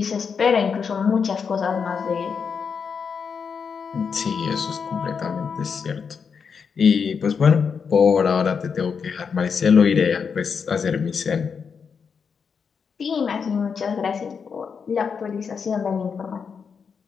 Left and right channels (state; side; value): quieter; right; 6.1 dB